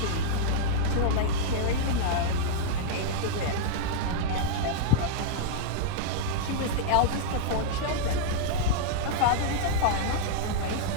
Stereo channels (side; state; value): both; different; correlation -0.02